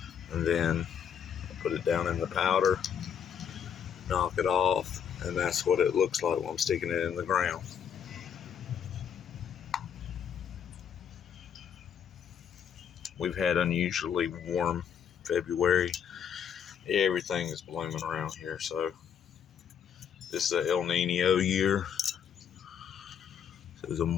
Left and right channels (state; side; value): quieter; right; 8.0 dB